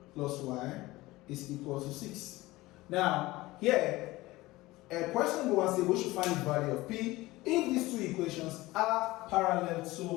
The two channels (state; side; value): quieter; right; 19.2 dB